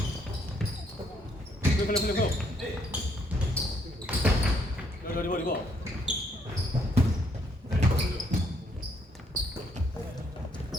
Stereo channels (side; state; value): both; normal; correlation 0.70